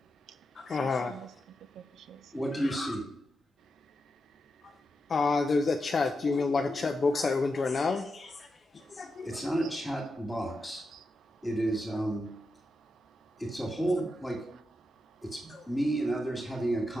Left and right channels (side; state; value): both; normal; correlation 0.87